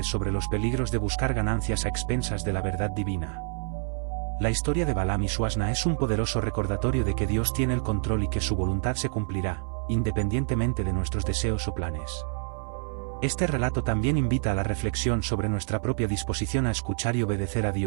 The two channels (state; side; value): silent; left; 55 dB below the other